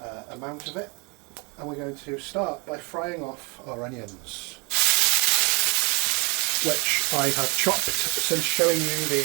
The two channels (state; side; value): quieter; left; 31.1 dB